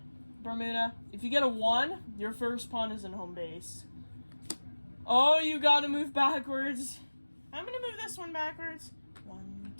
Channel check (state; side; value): inverted; both; correlation -1.00